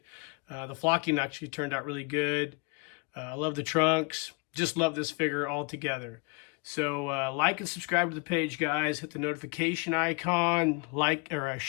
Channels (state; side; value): quieter; right; 32.6 dB